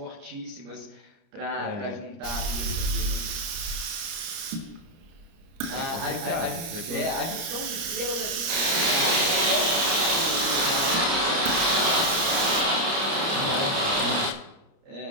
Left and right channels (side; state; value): left; late; 30 ms